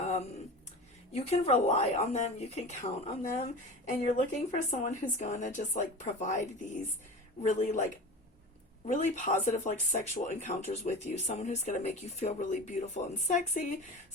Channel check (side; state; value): both; normal; correlation 0.32